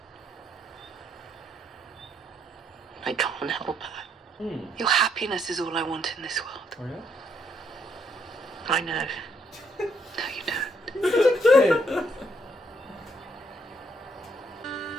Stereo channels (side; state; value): both; normal; correlation 0.72